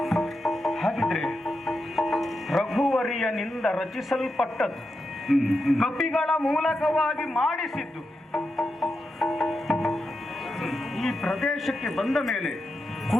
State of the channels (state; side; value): normal; both; correlation 0.87